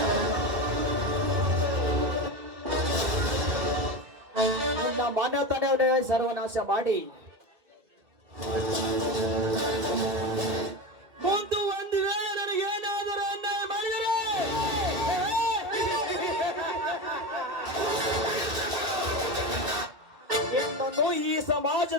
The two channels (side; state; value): left; late; 2.2 ms